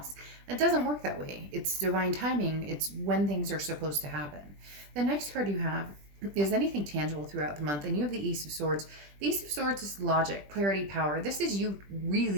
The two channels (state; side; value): late; left; 20 ms